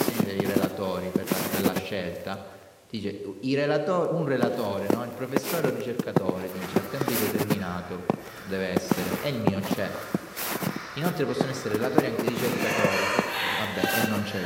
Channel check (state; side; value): identical; both; correlation 1.00